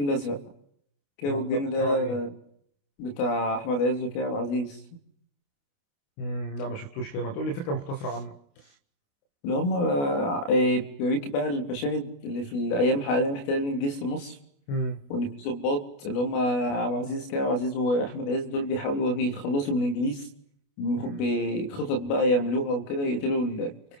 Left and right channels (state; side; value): late; right; 28 ms